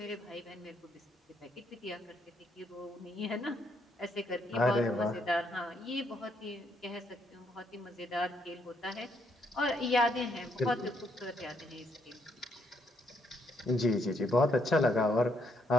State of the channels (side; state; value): both; normal; correlation 0.73